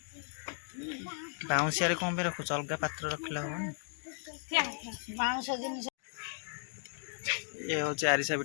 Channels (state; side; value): silent; right; digital silence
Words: ବାଉଁଶିଆରେ କ'ଣ ପାଇଁ ରଖୁଛ? ଅଲଗା ପାତ୍ର ରଖିଲେ ହବନି? ବାଉଁଶ ଜିନିଷ ଇଏ ହେଉଛି ଆରିସା